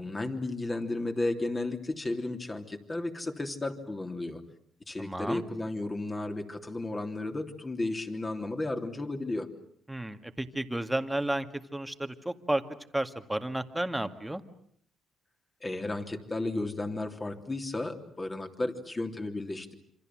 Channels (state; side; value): normal; both; correlation 0.95